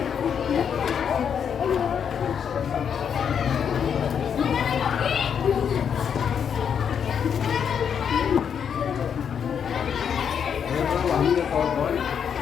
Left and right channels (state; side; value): quieter; right; 7.6 dB